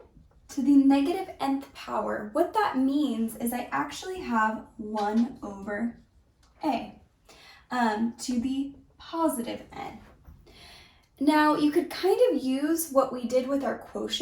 to the negative nth power, what that means is I actually have 1 over a to the positive n. Now you could kind of use what we did with our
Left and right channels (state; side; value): identical; both; correlation 1.00